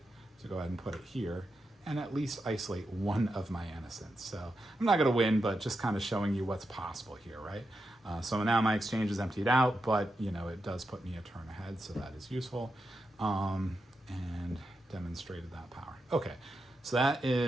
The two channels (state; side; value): normal; both; correlation 0.87